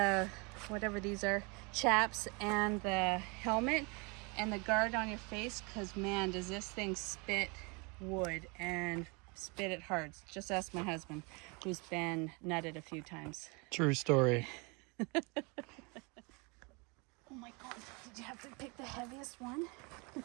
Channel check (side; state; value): left; quieter; 30.2 dB